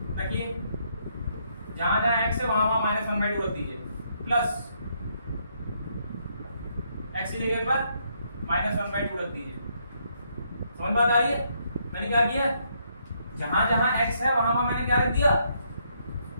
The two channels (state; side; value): inverted; both; correlation -0.73